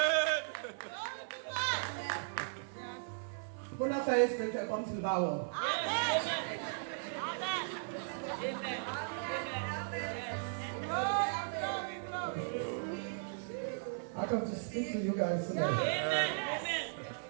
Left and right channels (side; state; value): left; silent; 53 dB below the other